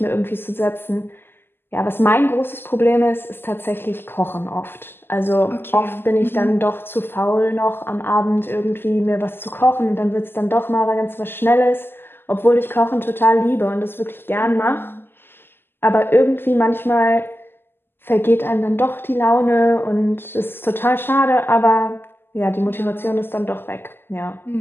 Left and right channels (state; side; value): late; right; 0.10 ms